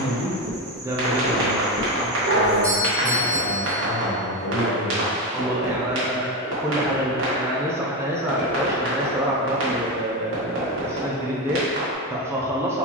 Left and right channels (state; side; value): normal; both; correlation 0.14